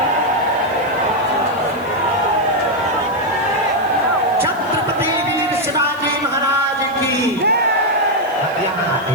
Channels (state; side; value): noise; right; hiss, 24 dB below the sound